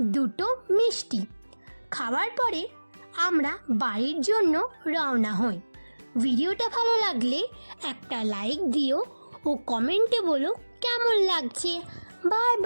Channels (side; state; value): both; inverted; correlation -1.00